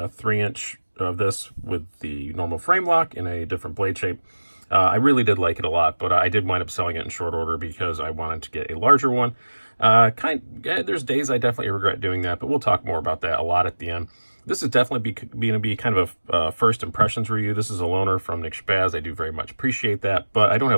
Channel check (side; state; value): both; inverted; correlation -1.00